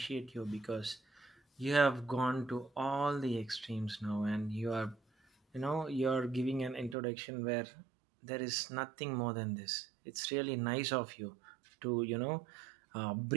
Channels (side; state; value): left; drops out; at 7.0 s